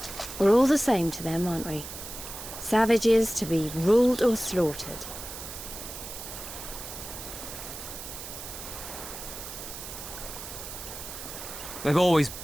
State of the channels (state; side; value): noise; right; hiss, 10 dB below the sound